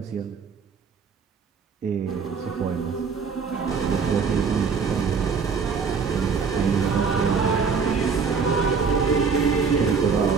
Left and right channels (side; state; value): left; quieter; 5.5 dB